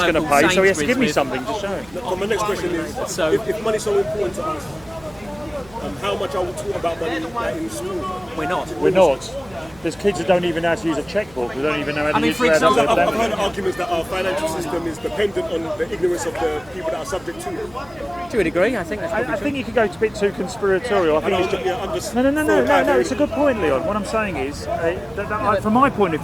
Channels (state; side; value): noise; right; hum, 24 dB below the sound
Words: going local to pay, so he has to Sainsbury's give me with- something to show. So my next question is, So- if money's so important to us, how much are we taught about money like, in school? We're not. We're not. There's kids that don't even know how to use a checkbook. They don't even know how to I mean, use for how to example, I've heard arguments that our financial system is dependent on the ignorance of the people that are subject to it. To a degree, I think that's probably I true. think you could go a bit too conspiratorial. I think it's just, I'm just no. It's a good point, Leon. What I'm saying is, from my point of